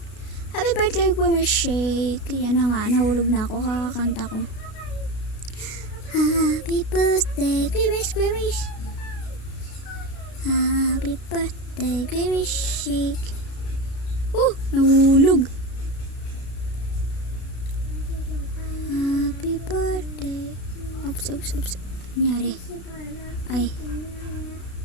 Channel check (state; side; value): late; right; 32 ms